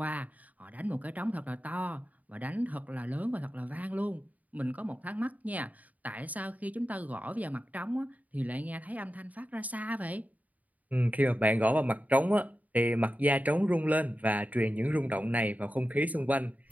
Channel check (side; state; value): left; late; 0.075 ms